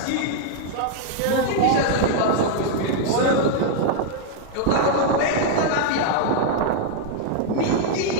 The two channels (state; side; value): different; both; correlation 0.00